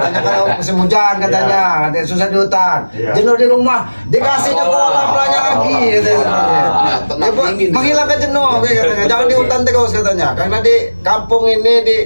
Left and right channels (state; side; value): inverted; both; correlation -1.00